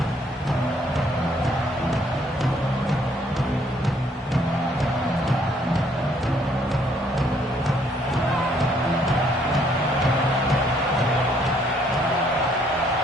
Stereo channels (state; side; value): normal; both; correlation 0.66